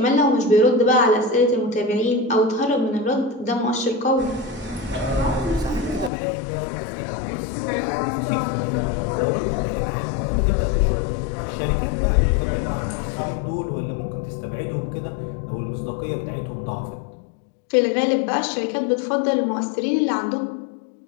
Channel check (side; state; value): right; drops out; at 6.1 s